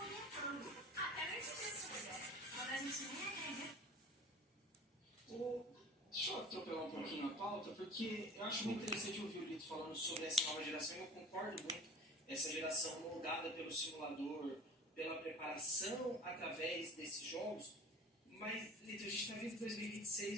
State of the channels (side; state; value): both; normal; correlation 0.41